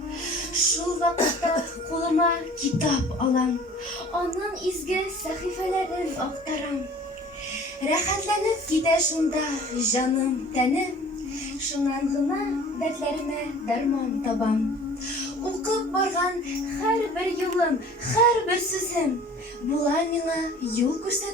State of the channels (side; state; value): both; normal; correlation 0.47